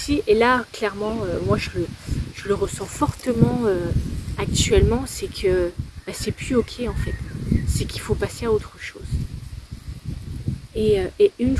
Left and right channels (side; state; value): both; identical; correlation 1.00